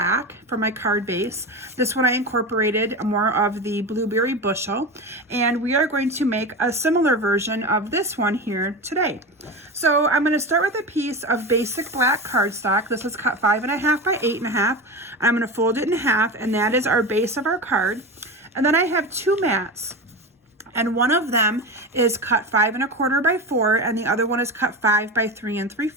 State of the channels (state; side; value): normal; both; correlation 0.25